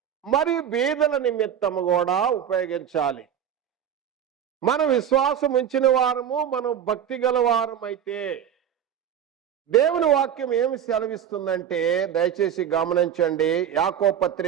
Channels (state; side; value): quieter; left; 9.3 dB